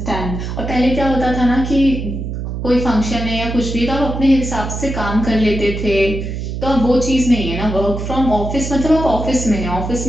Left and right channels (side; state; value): right; noise; hum, 5 dB below the sound